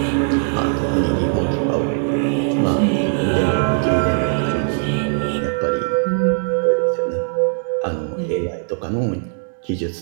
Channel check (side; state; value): left; silent; digital silence